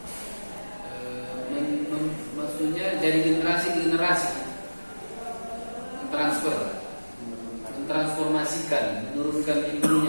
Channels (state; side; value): inverted; both; correlation -1.00